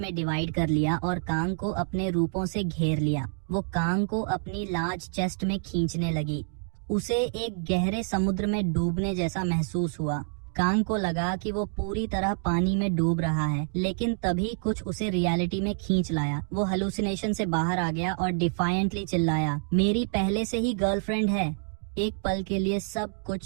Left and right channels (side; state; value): left; silent; digital silence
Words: डिवाइड कर लिया और कांग को अपने रूपों से घेर लिया। वो कांग को अपनी लार्ज चेस्ट में खींचने लगी। उसे एक गहरे समुद्र में डूबने जैसा महसूस हुआ। कांग को लगा कि वो पूरी तरह पानी में डूब रहा है, लेकिन तभी कुछ उसे रियलिटी में खींच लाया। वो हेलुसिनेशन से बाहर आ गया और डिफायंटली चिल्लाया, मेरी पहले से ही गर्लफ्रेंड है। एक पल के लिए सब कुछ